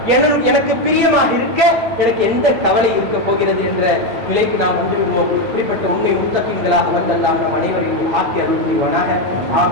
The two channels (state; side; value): late; left; 8.6 ms